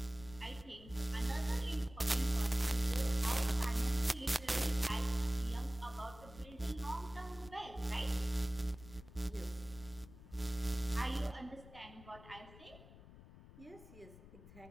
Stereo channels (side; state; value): left; noise; rumble, 18 dB below the sound